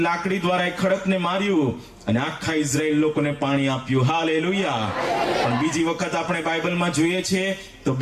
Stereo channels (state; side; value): identical; both; correlation 1.00